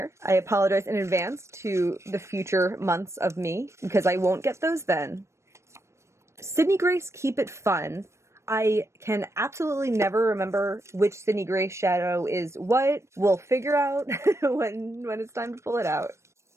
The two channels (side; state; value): left; late; 0.13 ms